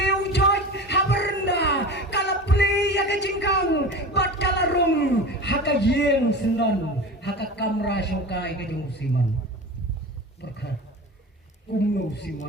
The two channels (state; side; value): normal; both; correlation 0.32